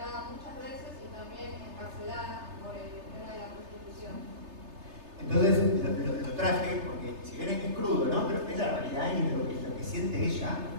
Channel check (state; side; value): late; left; 3.3 ms